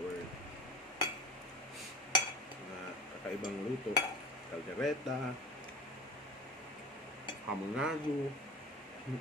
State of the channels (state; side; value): normal; both; correlation 0.34